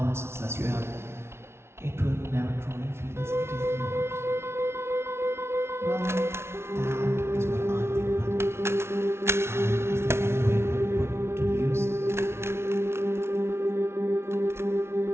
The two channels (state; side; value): late; left; 0.12 ms